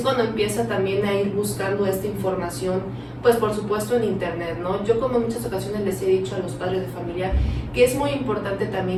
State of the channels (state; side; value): identical; both; correlation 1.00